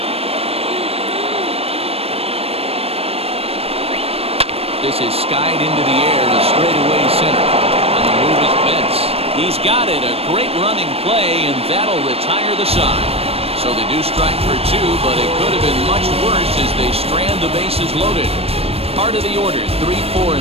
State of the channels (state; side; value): late; left; 0.28 ms